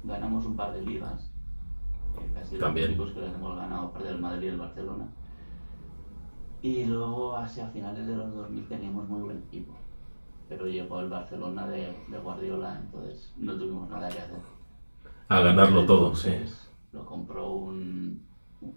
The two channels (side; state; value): both; inverted; correlation -1.00